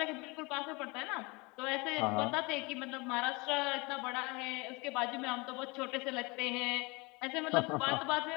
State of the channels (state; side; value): quieter; right; 26.8 dB